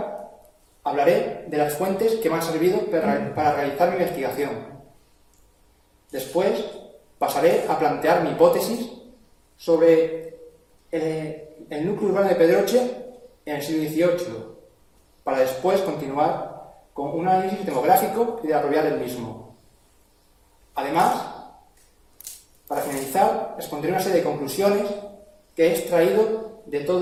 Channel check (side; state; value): both; identical; correlation 1.00